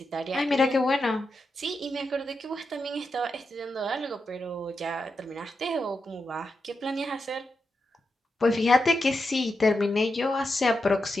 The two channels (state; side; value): normal; both; correlation 0.87